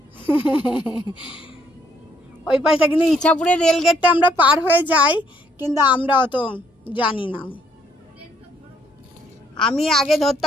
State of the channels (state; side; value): normal; both; correlation 0.68